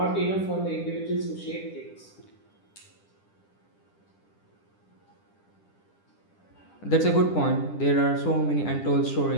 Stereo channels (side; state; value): right; late; 10 ms